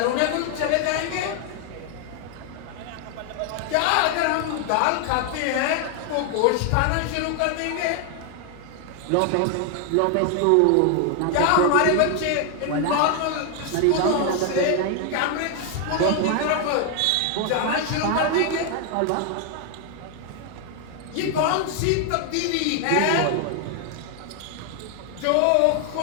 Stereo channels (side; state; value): both; different; correlation 0.00